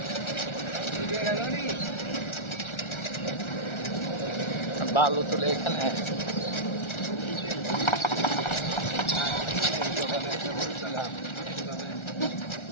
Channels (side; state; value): right; late; 1.4 ms